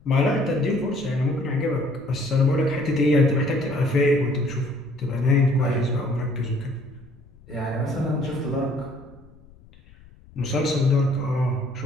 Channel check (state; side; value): noise; left; rumble, 25 dB below the sound